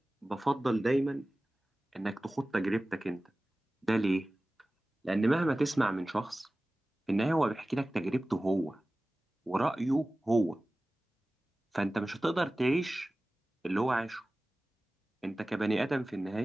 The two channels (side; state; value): both; normal; correlation 0.97